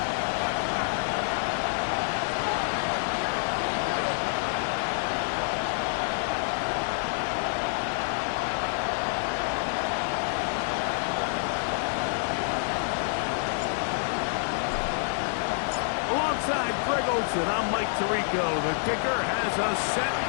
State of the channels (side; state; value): right; silent; 56 dB below the other